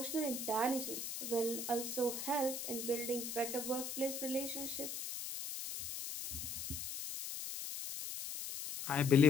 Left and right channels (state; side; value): noise; left; hiss, 6 dB below the sound